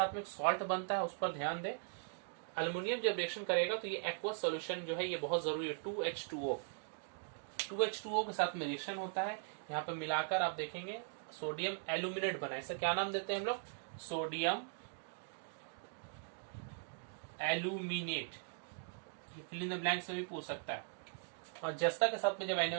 में एक सॉल्ट बनता है, उस पर ध्यान दें। अल्युमिनियम जब रिएक्शन करेगा तो ये एक्वस सॉल्यूशन जो है ये बहुत जरूरी है, 2H2O। 2H2O के साथ में रिएक्शन होता है। यहाँ पे मिलाकर आप देखेंगे सोडियम एल्यूमिनेट बना है। इसे क्या नाम देते हैं हम लोग? Sodium aluminate. ये फिल इन द ब्लैंक से भी पूछ सकता है। और जस्ता के साथ में जब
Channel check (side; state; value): left; silent; digital silence